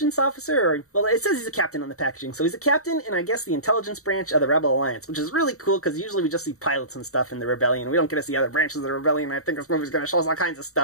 officer, or, well, it says he's a captain on the packaging. So he's a captain in, I guess, the intelligence branch of the Rebel Alliance, which is really cool, because usually we just see pilots and stuff in the Rebellion. We don't get to see other branches of the Rebellion, and I think this movie's going to show us all kinds of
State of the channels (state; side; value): late; right; 0.64 ms